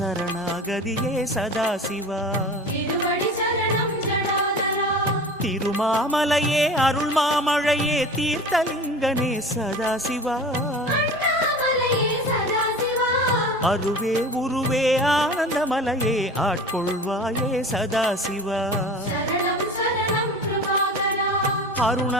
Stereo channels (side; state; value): both; normal; correlation 0.37